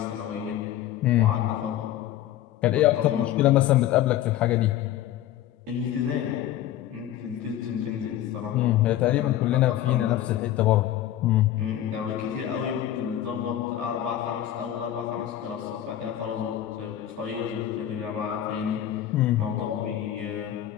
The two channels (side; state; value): right; quieter; 12.4 dB